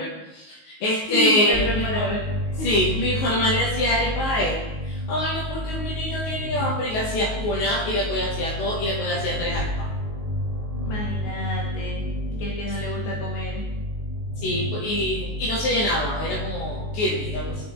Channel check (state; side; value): late; right; 19 ms